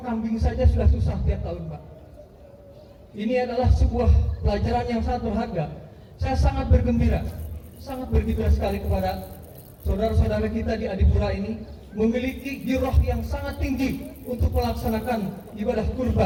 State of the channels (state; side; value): identical; both; correlation 1.00